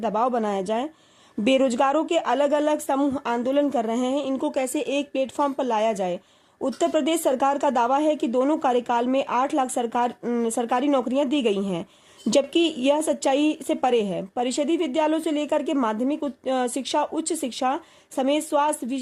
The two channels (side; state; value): both; identical; correlation 1.00